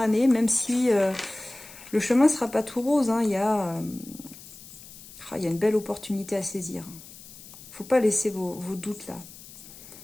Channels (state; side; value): noise; left; hiss, 18 dB below the sound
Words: même si le chemin ne sera pas tout rose. Hein, il y a une belle opportunité à saisir. Il ne faut pas laisser vos doutes là.